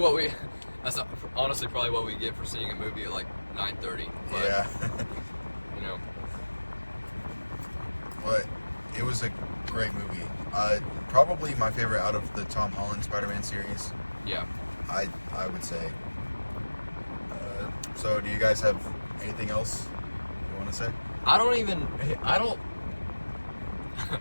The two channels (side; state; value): both; inverted; correlation -1.00